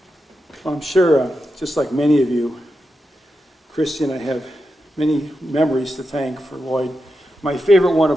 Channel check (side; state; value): both; normal; correlation 0.88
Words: I'm sure, just like many of you, Christy and I have many memories to thank for Lloyd. My favorite one